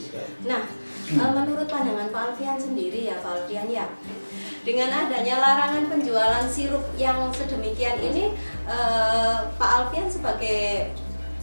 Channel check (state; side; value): inverted; both; correlation -1.00